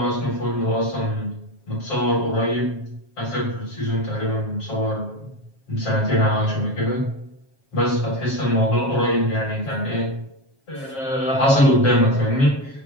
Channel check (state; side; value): late; right; 7.4 ms